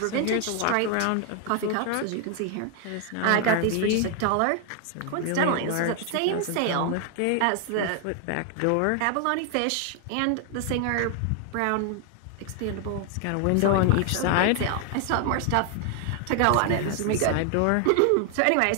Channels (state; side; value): different; both; correlation 0.00